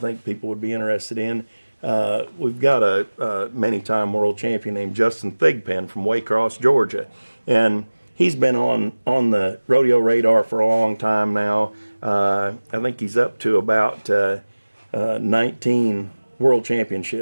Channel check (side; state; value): both; inverted; correlation -1.00